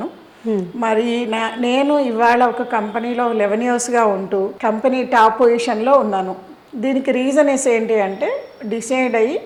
మరి నేను ఇవాళ ఒక కంపెనీలో 11 ఇయర్స్గా ఉంటూ కంపెనీ టాప్ పొజిషన్లో ఉన్నాను. దీనికి రీజన్స్ ఏంటి అంటే డిసైడ్ అయ్యి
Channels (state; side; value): identical; both; correlation 1.00